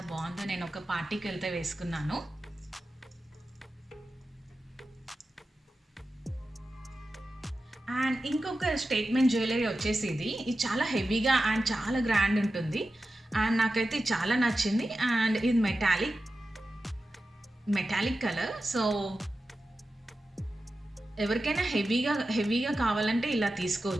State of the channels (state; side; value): normal; both; correlation 0.93